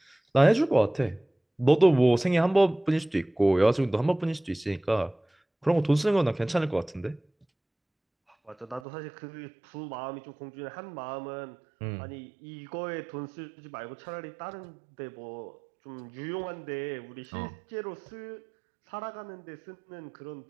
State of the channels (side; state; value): left; drops out; at 8.8 s